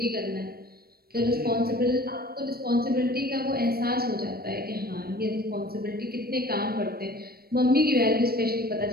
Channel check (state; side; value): late; left; 0.44 ms